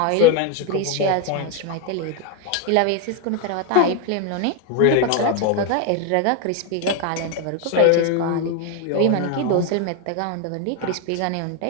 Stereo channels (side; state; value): both; different; correlation 0.01